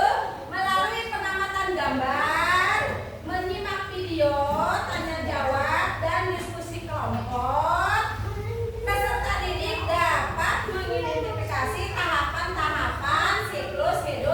melalui pengamatan gambar, menyimak video, tanya jawab dan diskusi kelompok. Peserta didik dapat mengidentifikasi tahapan-tahapan siklus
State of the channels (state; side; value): identical; both; correlation 1.00